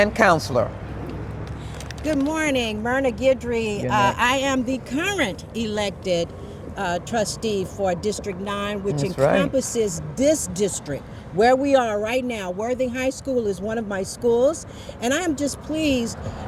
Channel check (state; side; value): identical; both; correlation 1.00